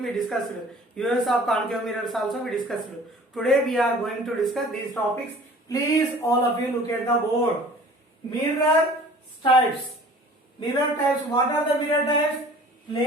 we discussed. Use of concave mirrors also we discussed. Today we are going to discuss these topics. Please all of you look at the board. Mirror types. Mirror types. What are the mirror types?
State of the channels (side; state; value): both; normal; correlation 0.47